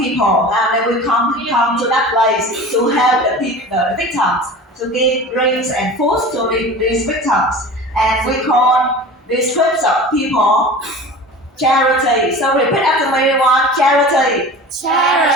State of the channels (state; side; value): normal; both; correlation 0.37